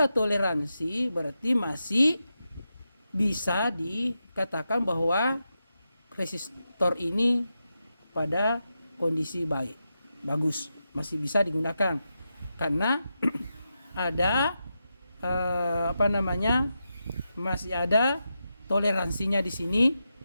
toleransi berarti masih bisa dikatakan bahwa resistor ini pada kondisi bagus, masih bisa digunakan karena ada masih ada toleransinya di sini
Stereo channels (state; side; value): inverted; both; correlation -0.88